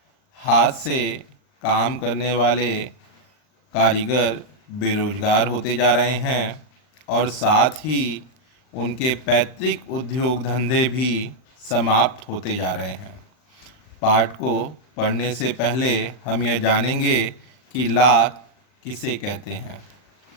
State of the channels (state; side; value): late; right; 39 ms